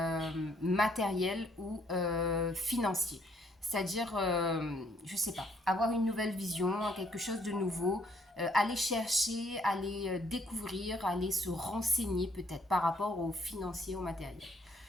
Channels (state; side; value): normal; both; correlation 0.67